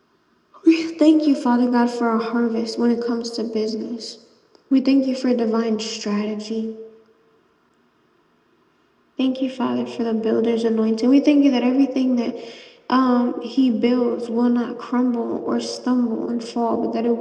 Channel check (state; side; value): identical; both; correlation 1.00